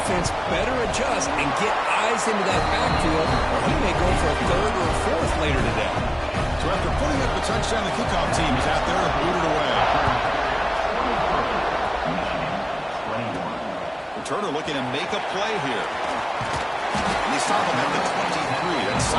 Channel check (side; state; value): both; identical; correlation 1.00